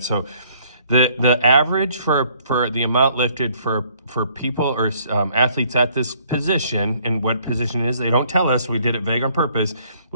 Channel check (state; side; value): inverted; both; correlation -0.62